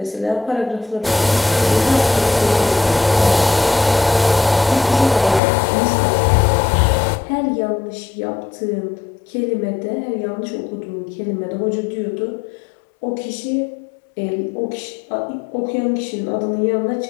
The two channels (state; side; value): drops out; right; at 5.4 s